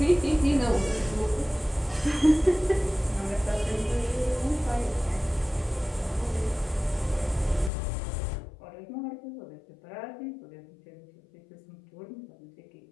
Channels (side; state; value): right; drops out; at 7.7 s